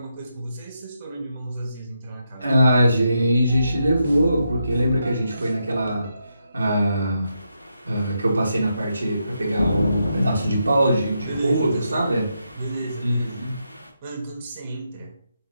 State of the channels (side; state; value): both; inverted; correlation -0.82